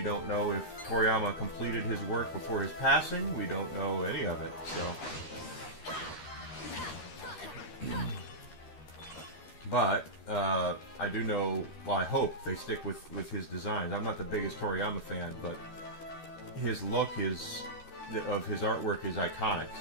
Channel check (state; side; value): late; right; 13 ms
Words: don't know if Toriyama completed his work before his passing. We don't know any of it. So, but I do know. Well, I hope they stick with his designs. I'm not the biggest Toriyama fan, but his look of his artwork is iconic,